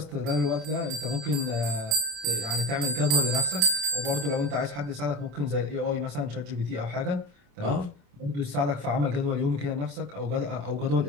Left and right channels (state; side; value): late; left; 27 ms